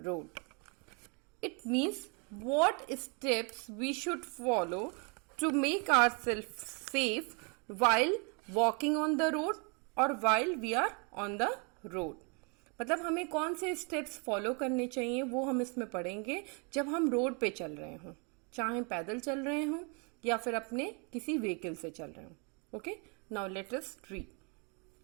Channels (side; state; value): left; quieter; 34.7 dB